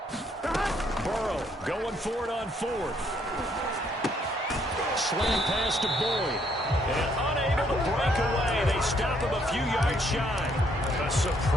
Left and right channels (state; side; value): normal; both; correlation 0.69